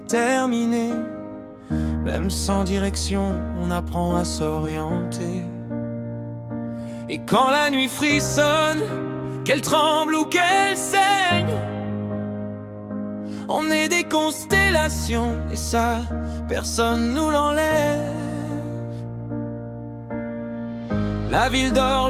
Même sans direction, on apprend à s'orienter. Et quand la nuit frissonne, qu'elle tremble ou qu'elle saigne, on est des constellations, et ça, personne nous l'enlève. La ville dort,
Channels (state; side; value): identical; both; correlation 1.00